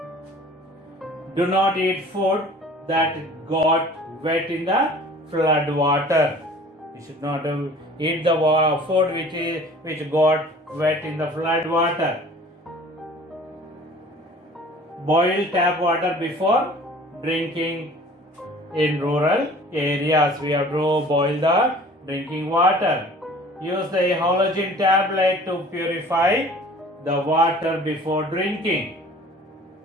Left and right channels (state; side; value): normal; both; correlation 0.48